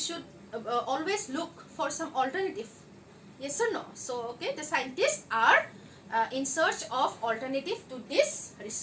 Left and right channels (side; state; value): both; identical; correlation 1.00